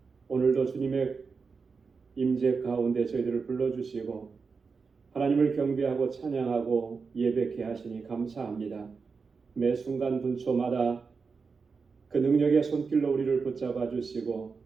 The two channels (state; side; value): quieter; left; 5.0 dB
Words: 오늘도 주님의 임재 가운데 저희들을 불러주시고 하나님을 경배하고 찬양하고 예배케 하시니 감사합니다. 매 순간 분초마다 그 능력의 손길로 우리를 붙잡아 주시고